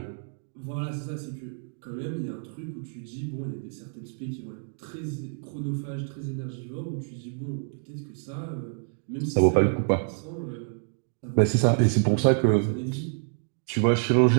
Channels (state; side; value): silent; left; 60 dB below the other